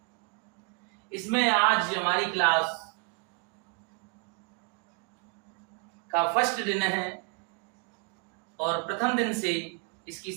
इसमें आज हमारी क्लास का फर्स्ट दिन है और प्रथम दिन से इसकी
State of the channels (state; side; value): quieter; left; 34.4 dB